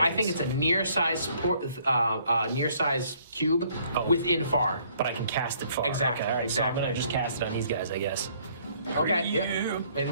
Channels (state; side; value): inverted; both; correlation -0.63